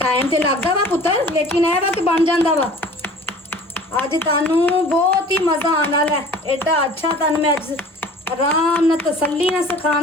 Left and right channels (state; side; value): normal; both; correlation 0.45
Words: टाइम ते लगदा वा पुत्तर लेकिन ए वा कि बन जांदा वा। अज तुहानू बहुत ही मज़ा आने वाला है। एडा अच्छा तुहानू मैं अज आराम नाल तसल्ली नाल